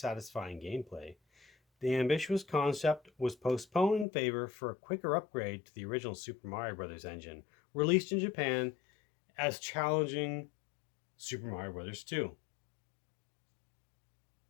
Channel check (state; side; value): drops out; right; at 4.0 s